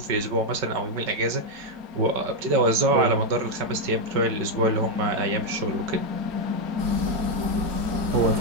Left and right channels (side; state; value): left; late; 5.3 ms